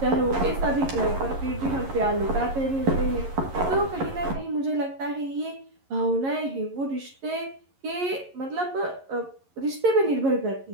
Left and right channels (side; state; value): left; late; 11 ms